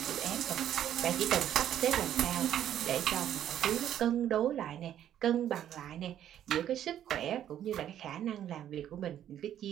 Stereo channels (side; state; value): left; quieter; 10.8 dB